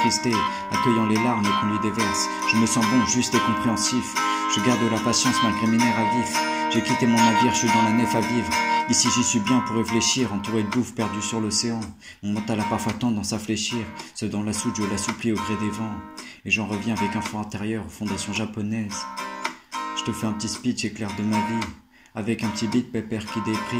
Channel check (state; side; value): identical; both; correlation 1.00